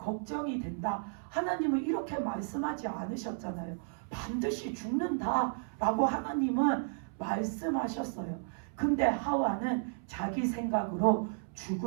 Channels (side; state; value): left; silent; 56 dB below the other